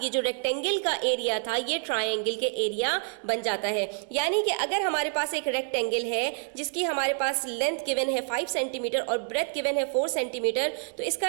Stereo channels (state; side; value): silent; left; 56 dB below the other